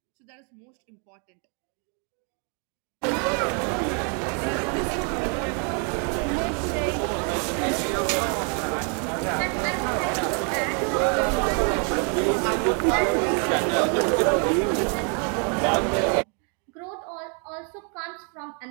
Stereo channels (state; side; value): quieter; left; 39.4 dB